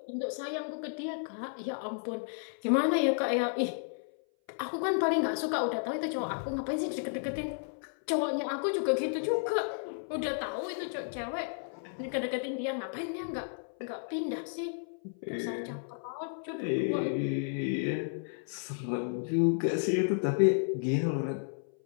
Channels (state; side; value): silent; right; 56 dB below the other